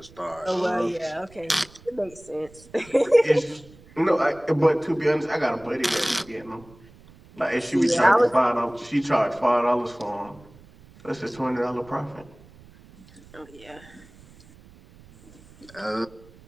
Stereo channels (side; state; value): right; noise; rumble, 24 dB below the sound